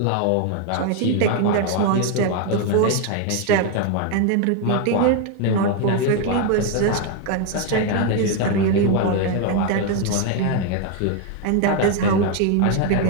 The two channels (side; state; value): both; different; correlation 0.01